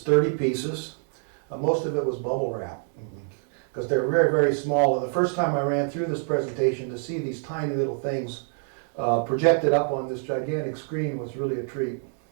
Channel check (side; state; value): left; silent; 58 dB below the other